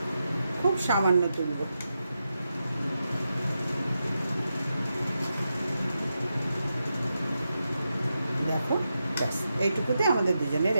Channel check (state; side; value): inverted; both; correlation -0.88